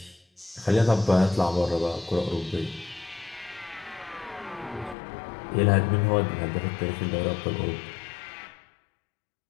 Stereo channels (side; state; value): right; drops out; at 5.0 s